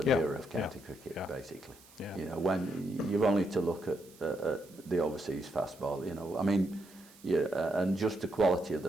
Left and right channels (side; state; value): right; noise; hiss, 24 dB below the sound